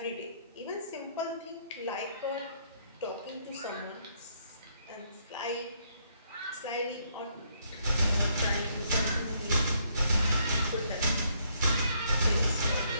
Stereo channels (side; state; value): both; inverted; correlation -0.71